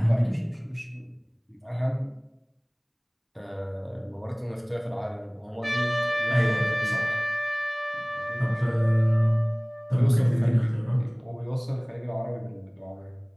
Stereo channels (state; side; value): identical; both; correlation 1.00